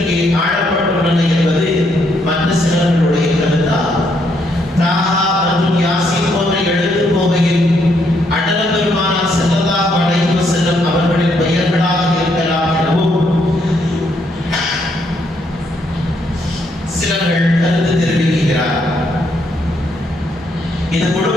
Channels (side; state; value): both; normal; correlation 0.74